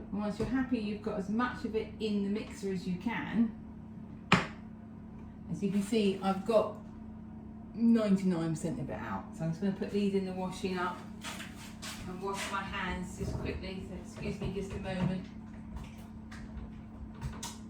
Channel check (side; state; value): both; identical; correlation 1.00